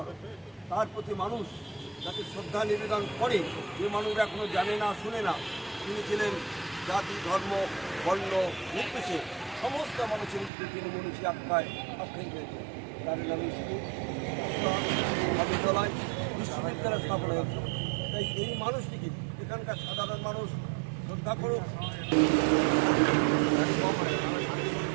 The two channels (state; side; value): drops out; left; at 10.5 s